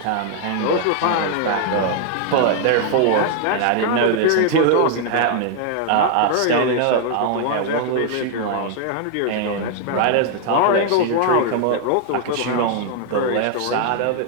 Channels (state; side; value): different; both; correlation 0.00